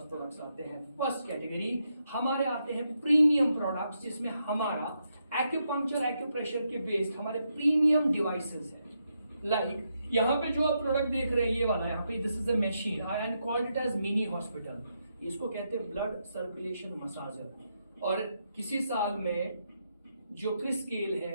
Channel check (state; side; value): inverted; both; correlation -0.82